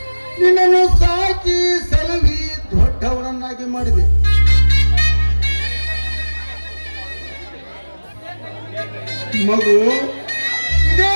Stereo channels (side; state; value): both; inverted; correlation -1.00